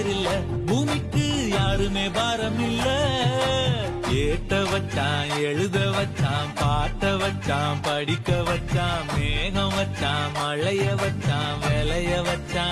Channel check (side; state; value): both; identical; correlation 1.00